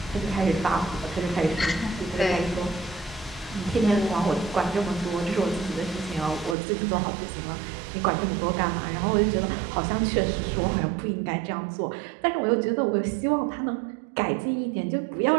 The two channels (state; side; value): drops out; left; at 6.6 s